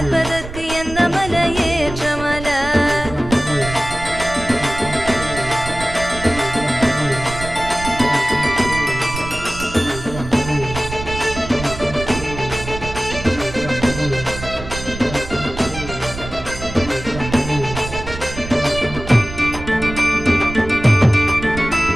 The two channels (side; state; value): right; noise; rumble, 11 dB below the sound